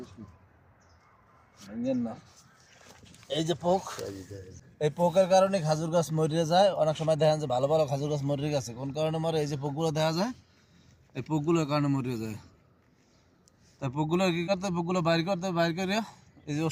না এই যে পোক, এই পোকের কারণে খাজুর গাছ মরিয়ে যায়। অনেক সময় দেখা যায় ভালো ভালো খাজুর গাছ মরিয়ে গেছে, কোন কারণে মরে? এই যে পোকগুলো দেখা যায়, এই পোকগুলোর কারণে মরিয়ে যায়। তাই পোকগুলো কি করতে, পোকগুলো বাইর করতে, বাইর করে এই যে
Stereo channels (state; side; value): identical; both; correlation 1.00